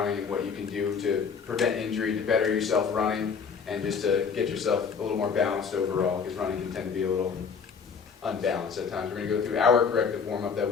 and what you can do to prevent injury, to better yourself running, and just to get yourself a little more balanced overall, because running can tend to be a little unbalanced at times. We're going to go through our corrective warm-up that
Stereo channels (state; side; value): quieter; right; 6.0 dB